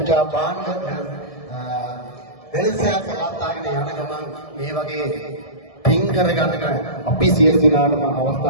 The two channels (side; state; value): right; late; 1.7 ms